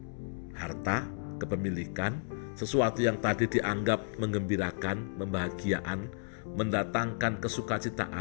Harta, kepemilikan, sesuatu yang tadi dianggap menggembirakan, membahagiaan, mendatangkan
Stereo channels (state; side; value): silent; right; digital silence